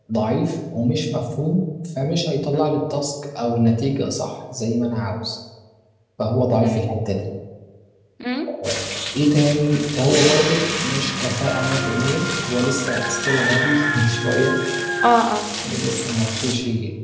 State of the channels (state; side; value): identical; both; correlation 1.00